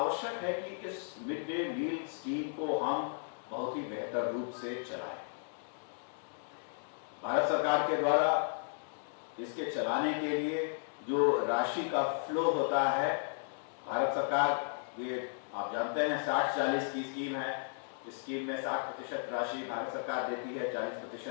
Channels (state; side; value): silent; right; digital silence